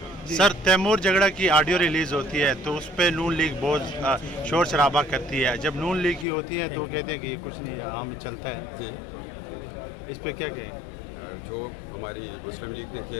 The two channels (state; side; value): drops out; right; at 6.2 s